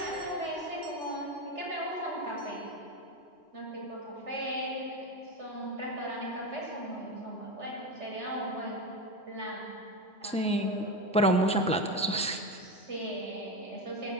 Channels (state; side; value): normal; both; correlation 0.18